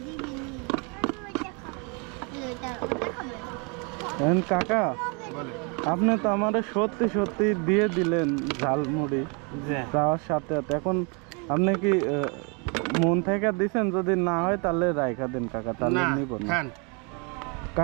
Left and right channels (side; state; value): left; quieter; 33.6 dB